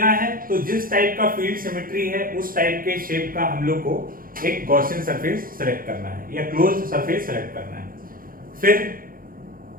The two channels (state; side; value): late; left; 0.41 ms